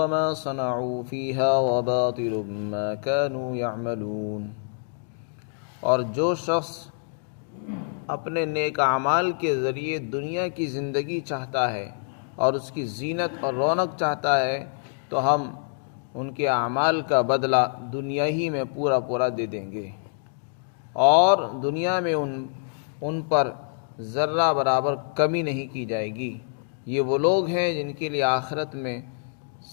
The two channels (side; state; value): right; silent; digital silence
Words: ما صنعوا فيها وباطل ما كانوا يعملون۔ اور جو شخص اپنے نیک اعمال کے ذریعے دنیا کی زندگی چاہتا ہے اور اس کی زینت اور رونق چاہتا ہے تو ہم ان کے اعمال کا بدلہ دنیا ہی میں پورا دے دیں گے، اور دنیا میں ان پر ذرہ برابر کمی نہیں کی جائے گی۔ یہ وہ لوگ ہیں جن کے لیے آخرت میں